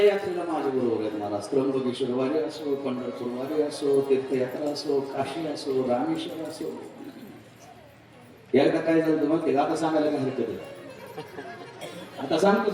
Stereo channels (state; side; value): identical; both; correlation 1.00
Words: यात्रेला माझ्या बरोबर आहेत मला. त्र्यंबकेश्वर वारी असो, पंढरपूर वारी असो, तीर्थयात्रा असो, काशी असो, रामेश्वर असो. एकदा काय झालं मग ते आता सांगायला काय हरकत आहे? आता सांगतो